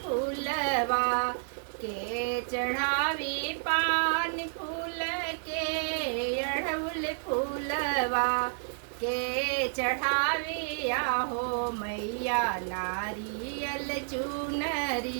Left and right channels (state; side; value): silent; left; digital silence